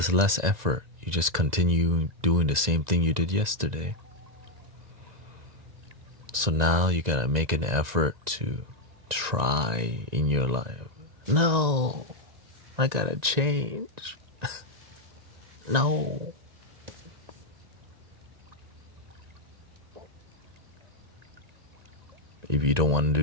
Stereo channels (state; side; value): late; left; 1.9 ms